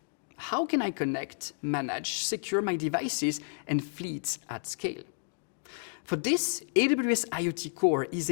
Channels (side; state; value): right; silent; digital silence